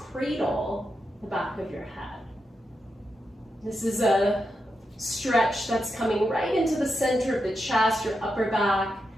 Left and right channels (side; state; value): both; normal; correlation 0.86